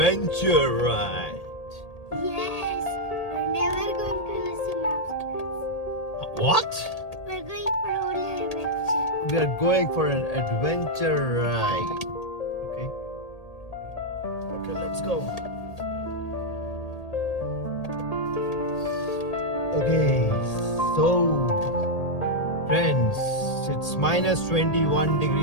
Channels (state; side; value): late; right; 1.8 ms